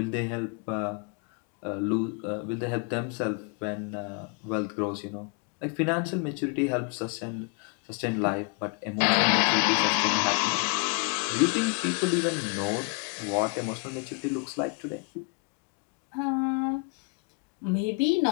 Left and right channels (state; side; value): quieter; right; 34.3 dB